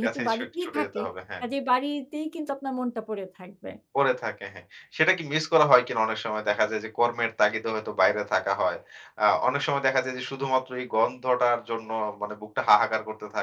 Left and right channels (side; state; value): both; identical; correlation 1.00